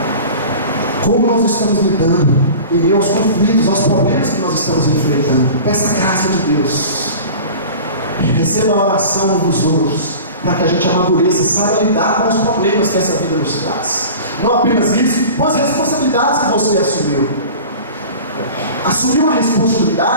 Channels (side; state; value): both; inverted; correlation -0.38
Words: Como nós estamos lidando em meio aos conflitos, aos problemas que nós estamos enfrentando. Peça a graça de Deus. Receba a oração uns dos outros, para que a gente amadureça, saiba lidar com os problemas que essa vida nos traz. Não apenas isso, mas as responsabilidades que você assumiu. Assumir uma